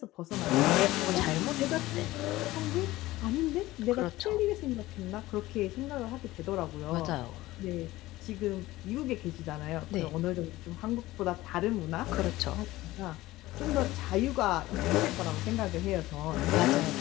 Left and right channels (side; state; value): right; quieter; 17.6 dB